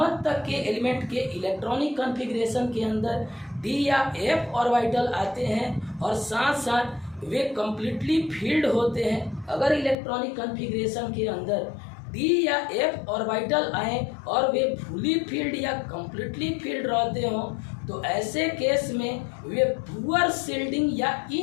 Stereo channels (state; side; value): drops out; right; at 10.0 s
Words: तक के एलिमेंट के इलेक्ट्रॉनिक कॉन्फ़िगरेशन के अंदर डी या एफ ऑर्बिटल आते हैं और साथ साथ वे कम्प्लीटली फील्ड होते हैं। अगर इलेक्ट्रॉनिक कॉन्फ़िगरेशन के अंदर डी या एफ ऑर्बिटल आए और वे फुली फील्ड या कम्प्लीटली फील्ड रहते हों तो ऐसे केस में वे पुअर शील्डिंग या